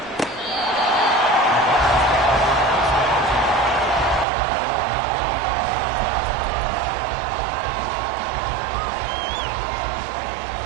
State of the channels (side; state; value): left; drops out; at 4.2 s